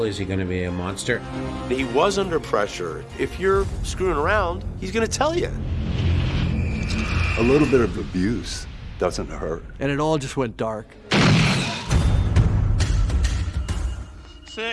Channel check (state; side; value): identical; both; correlation 1.00